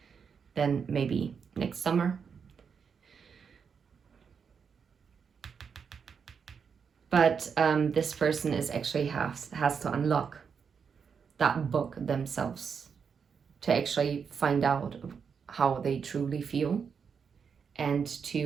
then maybe next summer. But this person is actually has to unlock that book themselves to actually find out how they truly feel, and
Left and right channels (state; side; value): quieter; left; 6.4 dB